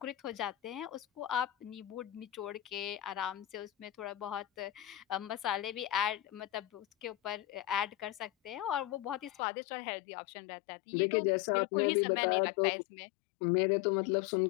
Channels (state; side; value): drops out; right; at 9.4 s